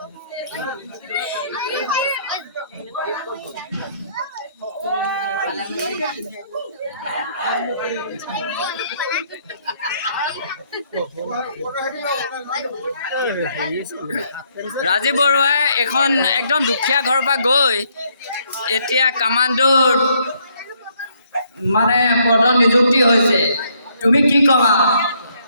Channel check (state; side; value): inverted; both; correlation -0.69